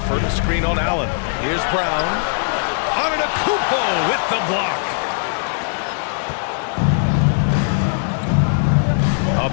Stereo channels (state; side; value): silent; right; 58 dB below the other